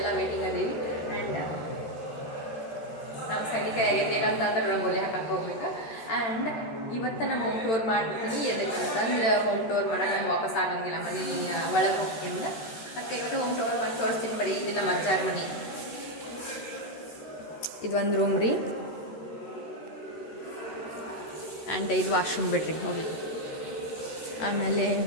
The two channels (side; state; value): right; late; 13 ms